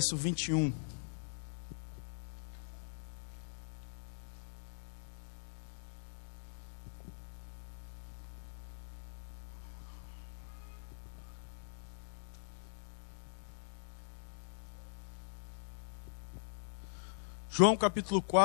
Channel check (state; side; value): silent; right; digital silence